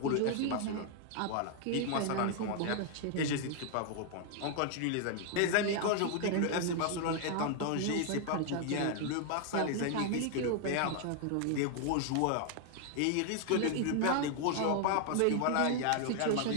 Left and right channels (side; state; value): both; different; correlation 0.00